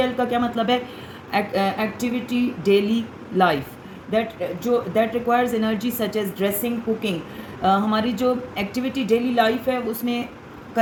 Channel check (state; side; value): identical; both; correlation 1.00